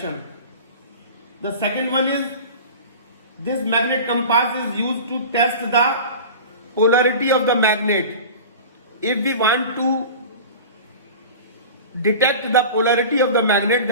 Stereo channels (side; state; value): both; inverted; correlation -0.36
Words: The second one is, this magnet compass is used to test the polarity of the magnet. If we want to detect the polarity of the magnet,